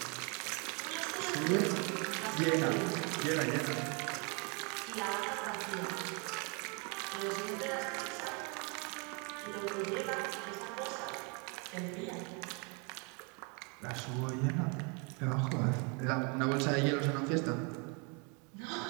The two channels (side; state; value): left; quieter; 33.6 dB